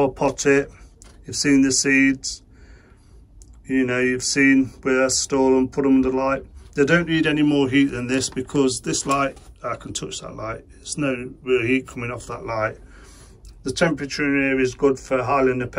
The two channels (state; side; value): identical; both; correlation 1.00